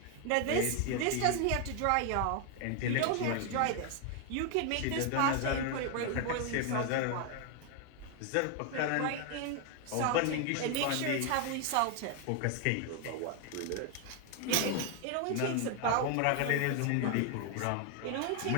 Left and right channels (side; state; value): both; different; correlation 0.01